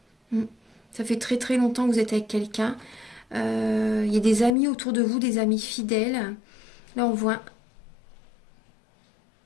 hein. Ça fait très très longtemps que vous êtes avec quelqu'un. Il y a des amis autour de vous, des amis fidèles. Là, on voit...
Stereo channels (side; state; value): right; drops out; at 4.5 s